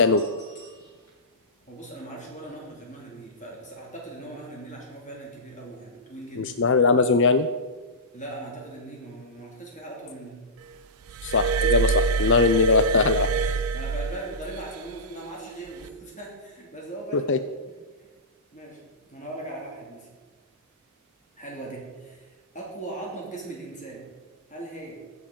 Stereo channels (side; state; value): both; normal; correlation -0.17